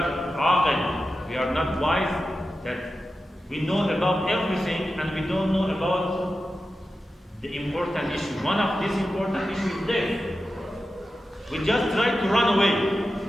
aqil, we are not wise, that we know about everything and we don't know about the important issue. One of these important issues is death. We just try to run away.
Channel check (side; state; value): both; normal; correlation 0.92